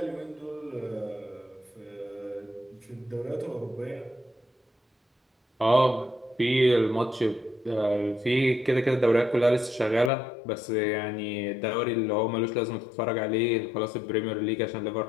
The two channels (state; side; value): drops out; right; at 10.1 s